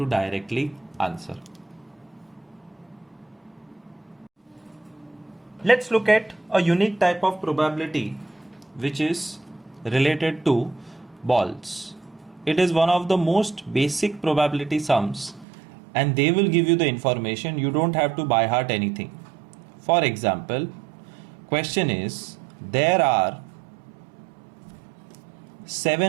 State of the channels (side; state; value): left; drops out; at 15.5 s